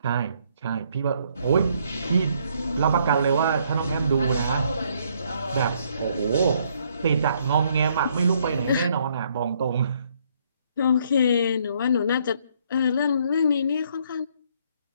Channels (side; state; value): both; inverted; correlation -0.68